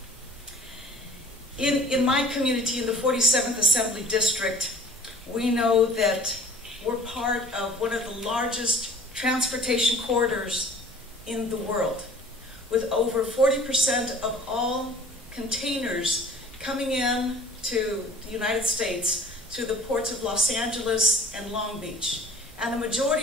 In my community, in the 47th Assembly District, we know that we're part of one of the largest transportation corridors in the world, with over 40% of all containers coming in to the United States through the ports of Los Angeles and Long Beach. And the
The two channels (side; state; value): both; normal; correlation 0.49